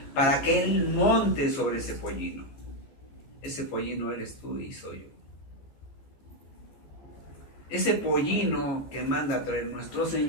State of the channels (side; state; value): right; late; 14 ms